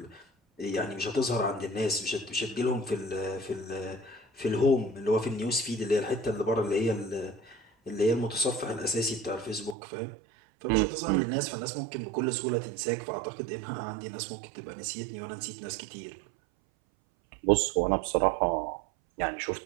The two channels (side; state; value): left; drops out; at 9.8 s